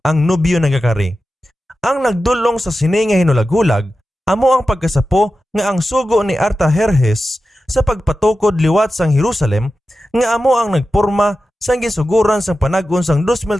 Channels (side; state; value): both; normal; correlation 0.93